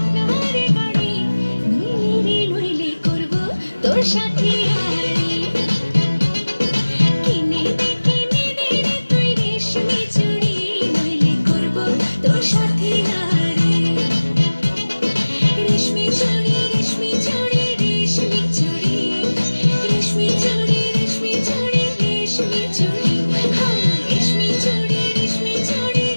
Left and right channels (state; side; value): inverted; both; correlation -1.00